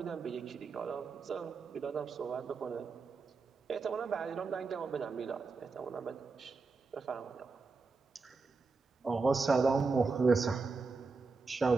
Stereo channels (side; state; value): left; quieter; 4.3 dB